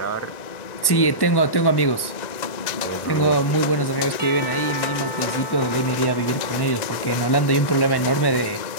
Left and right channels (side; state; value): right; late; 1.1 ms